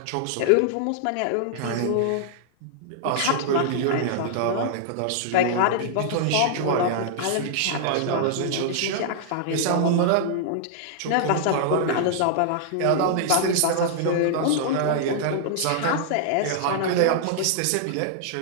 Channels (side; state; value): both; different; correlation -0.01